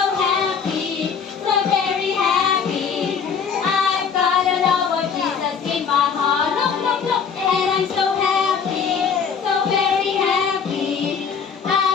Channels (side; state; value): right; quieter; 6.4 dB